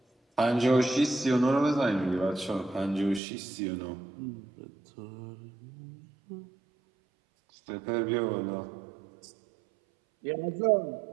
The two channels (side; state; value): left; drops out; at 3.2 s